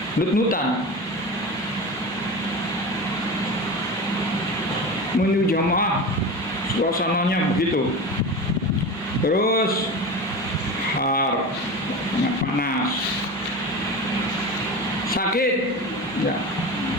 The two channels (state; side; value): normal; both; correlation 0.28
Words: nut-nutan. Menuju jamaah suasananya begitu. Terus har, sangat panas, sakit, ya,